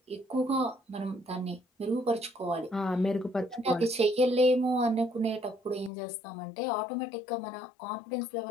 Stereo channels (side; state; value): right; drops out; at 5.9 s